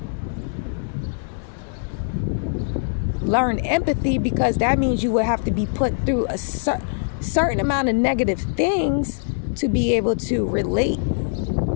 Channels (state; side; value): silent; right; digital silence